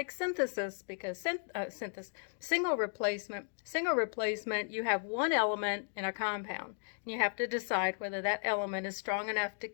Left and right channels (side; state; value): right; silent; 54 dB below the other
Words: synthesis because single replacement, you have one element in a compound. And you have to decide whether that element is strong enough to